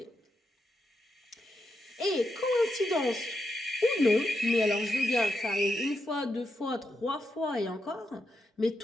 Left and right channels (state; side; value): normal; both; correlation 0.85